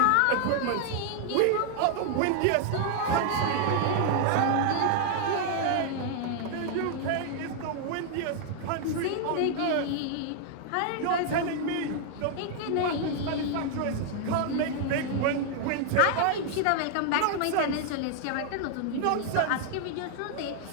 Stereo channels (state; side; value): different; both; correlation 0.00